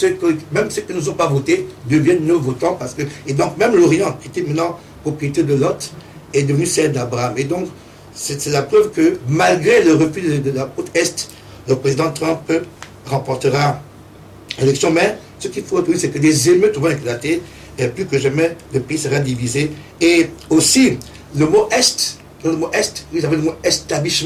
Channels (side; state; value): both; identical; correlation 1.00